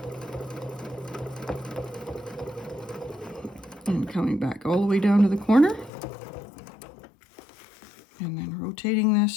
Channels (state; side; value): drops out; right; at 5.9 s